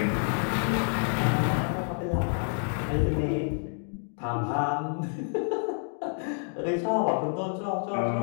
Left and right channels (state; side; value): silent; right; 59 dB below the other